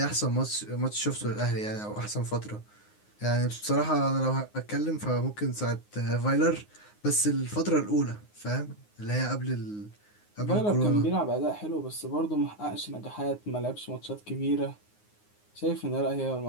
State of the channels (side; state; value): right; late; 9.6 ms